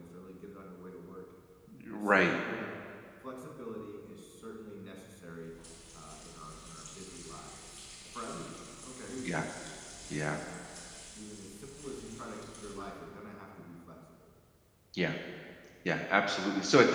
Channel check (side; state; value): both; identical; correlation 1.00